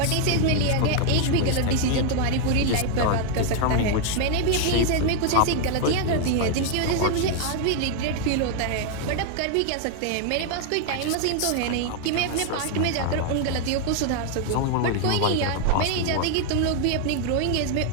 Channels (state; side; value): different; both; correlation 0.00